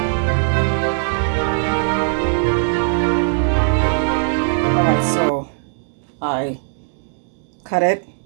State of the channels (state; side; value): silent; left; digital silence